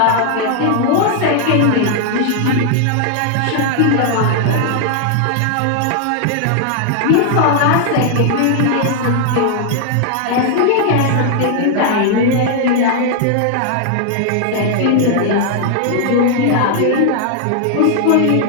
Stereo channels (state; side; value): different; both; correlation 0.00